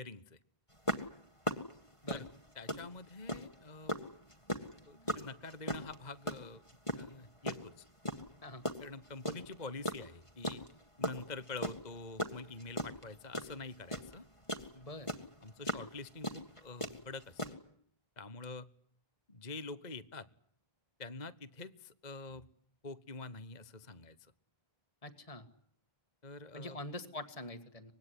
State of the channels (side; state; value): right; late; 1.5 ms